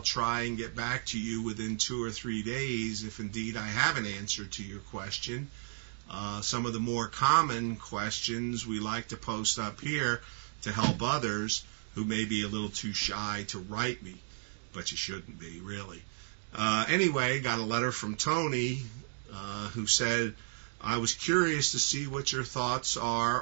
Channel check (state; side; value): silent; left; digital silence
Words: try and get back to you within 2 or 3 days if indeed I have an answer to your question. Some of the more common questions we like to post up here to help others who may be a little too shy to write me, but you shouldn't be, really. Anyway, got a letter from Tony who said, I was curious to see what your thoughts